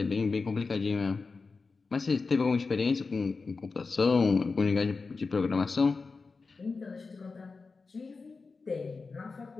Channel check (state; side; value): quieter; right; 4.3 dB